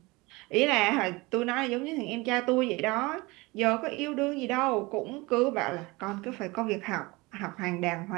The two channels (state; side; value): quieter; left; 23.6 dB